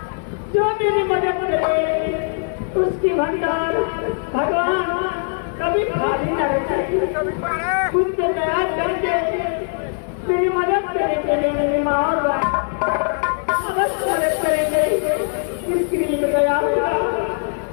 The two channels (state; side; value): silent; right; 64 dB below the other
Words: जो मेरी मदद करे उसकी भंडार भगवान कभी खाली न रखेगी। खुद से दया करके मेरी मदद करेंगे। मेरी माँ और अवश्य मदद करेंगे। जिसके लिए गया